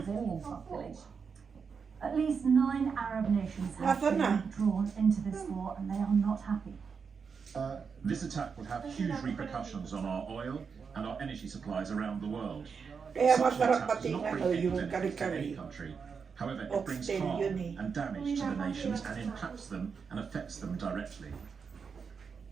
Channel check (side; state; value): left; quieter; 5.9 dB